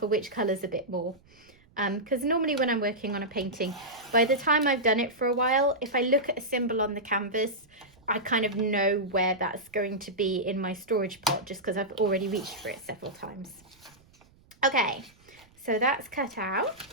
which colours a bit more. Because normally when I'm working on a painting, by the time I've done it for a while, if I look at a symbol on the canvas, I kind of know where that's going to be in my storage pot, just because I've already reached for it several times. Okay, so that's cut out.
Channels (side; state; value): right; noise; rumble, 30 dB below the sound